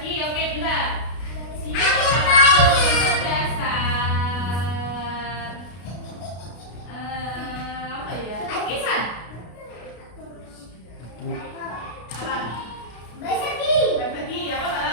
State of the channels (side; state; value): right; late; 33 ms